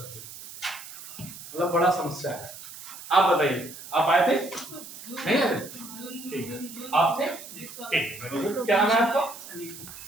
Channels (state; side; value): noise; right; hiss, 14 dB below the sound